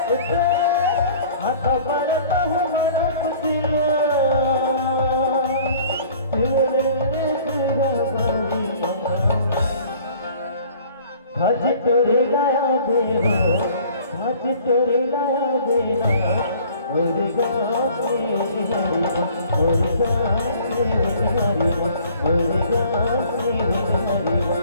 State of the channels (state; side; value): inverted; both; correlation -0.52